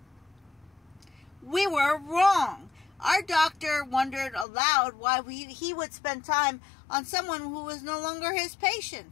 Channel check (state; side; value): drops out; right; at 4.5 s